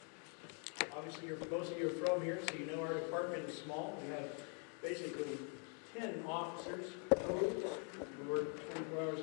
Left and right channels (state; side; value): quieter; right; 39.4 dB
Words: Obviously, most of you are from here, so you know our department is small. We have basically 10 officers total. We work 24 hours a